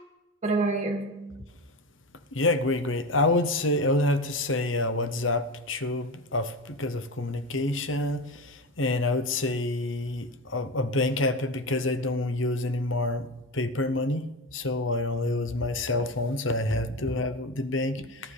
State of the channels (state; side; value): normal; both; correlation 0.23